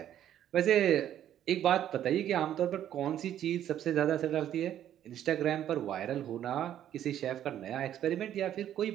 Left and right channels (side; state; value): left; quieter; 11.1 dB